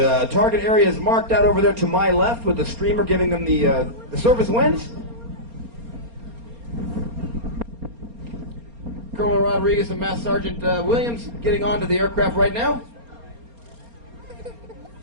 target area is marked out over there to my left with the streamer giving them the surface winds. Colonel Rodriguez and Master Sergeant Williams getting onto the aircraft right now.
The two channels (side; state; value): left; late; 4.3 ms